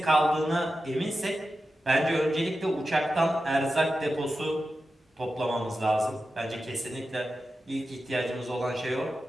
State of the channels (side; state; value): both; normal; correlation 0.92